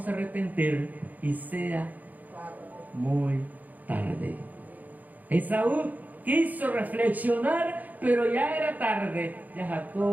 a arrepentir y sea muy tarde. Esaú quiso reflexionar, pero ya era tarde. Ya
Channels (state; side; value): late; left; 0.081 ms